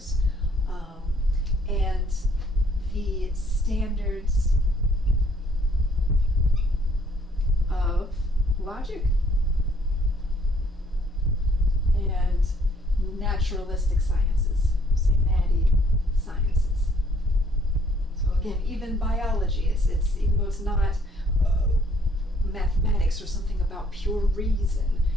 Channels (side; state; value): both; normal; correlation 0.64